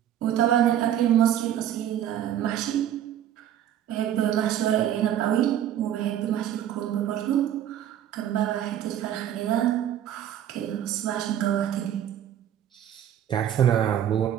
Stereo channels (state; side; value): quieter; left; 10.7 dB